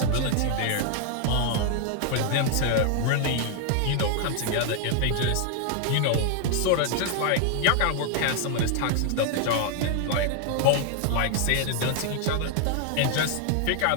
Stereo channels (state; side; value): different; both; correlation 0.00